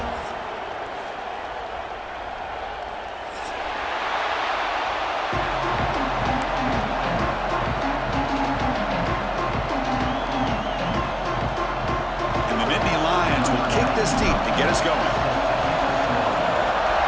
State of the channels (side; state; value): both; identical; correlation 1.00